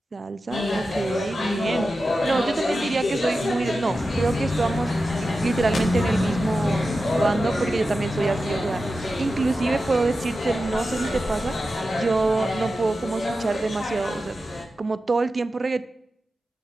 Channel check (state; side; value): normal; both; correlation 0.92